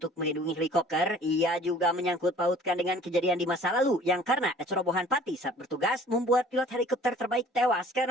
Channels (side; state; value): both; normal; correlation 0.51